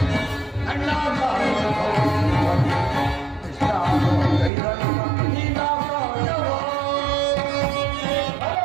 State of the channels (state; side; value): drops out; left; at 4.5 s